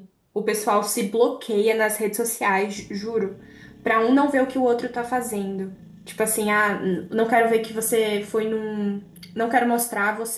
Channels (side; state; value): both; identical; correlation 1.00